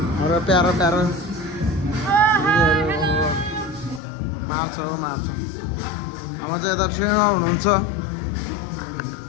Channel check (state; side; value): drops out; right; at 4.0 s